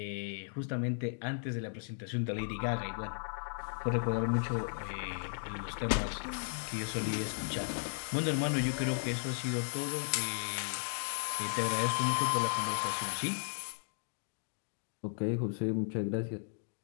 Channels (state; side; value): silent; right; digital silence